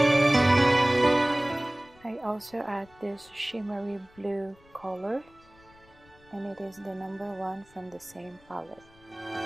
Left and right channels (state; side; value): noise; left; rumble, 28 dB below the sound